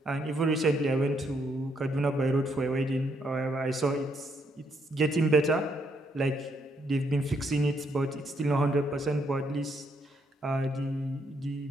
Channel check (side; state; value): both; normal; correlation 0.74